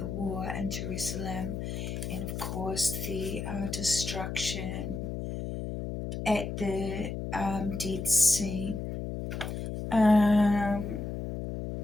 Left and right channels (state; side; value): noise; left; hum, 5 dB below the sound